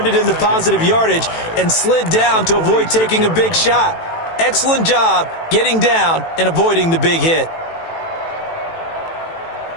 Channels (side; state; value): right; late; 18 ms